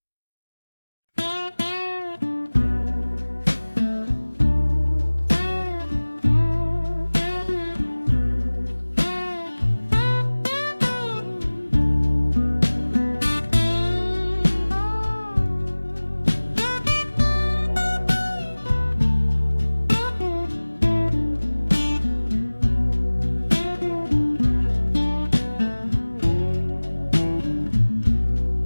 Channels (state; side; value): inverted; both; correlation -1.00